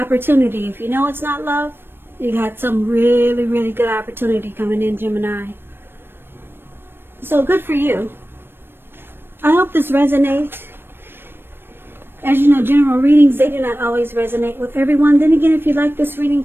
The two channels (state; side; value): late; left; 0.10 ms